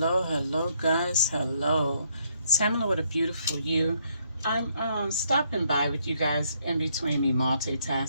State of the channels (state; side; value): inverted; both; correlation -0.72